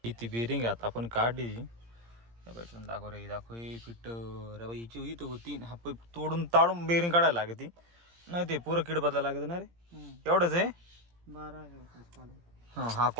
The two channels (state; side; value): late; left; 17 ms